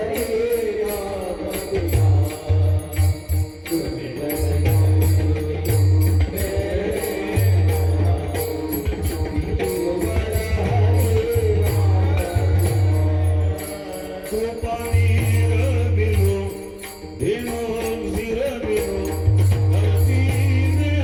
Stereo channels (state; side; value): identical; both; correlation 1.00